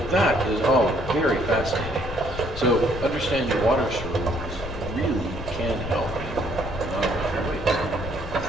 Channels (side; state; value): left; noise; rumble, 9 dB below the sound